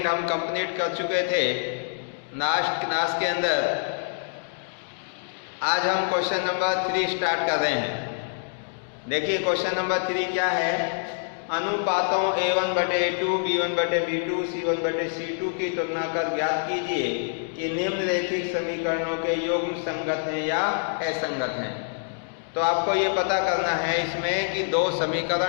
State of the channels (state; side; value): silent; right; digital silence